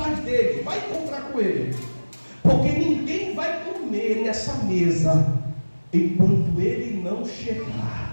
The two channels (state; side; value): inverted; both; correlation -1.00